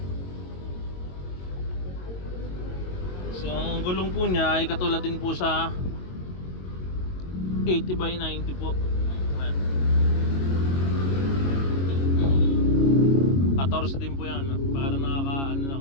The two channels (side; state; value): right; late; 22 ms